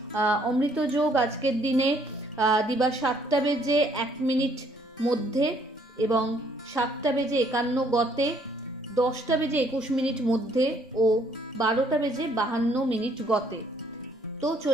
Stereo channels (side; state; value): both; normal; correlation 0.65